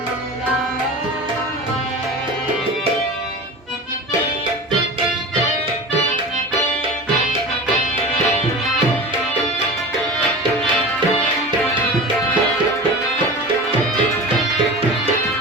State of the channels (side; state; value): both; normal; correlation 0.33